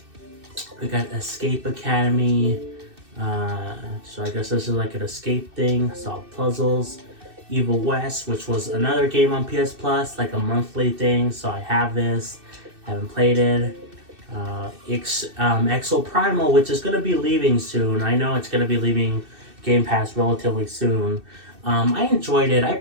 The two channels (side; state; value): left; late; 2.6 ms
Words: we got Escape Academy. So I guess this is like an escape thing. Solve puzzles. Evil West, which was another game on PS Plus, like a monthly thing. So I have this. Haven't played it. Exo Primal, which is gonna be leaving soon. I know it's gonna be leaving Game Pass relatively soon. I enjoyed it. I